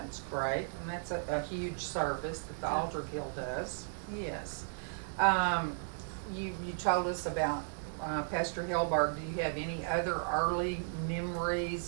great, and that's a huge service that the Altar Guild does. Yes. You told us about Pastor Helberg. Do you have any other early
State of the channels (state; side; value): silent; left; digital silence